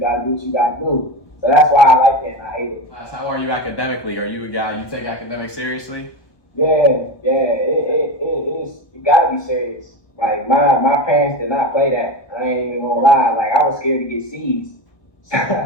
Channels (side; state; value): right; late; 1.2 ms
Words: do what you gotta do. So that's why I like it and I hate it. How are you academically? Are you a guy you take academics seriously? Yeah, it gotta be serious. Like my parents did not play that. I ain't even gonna lie. Like I was scared to get C's.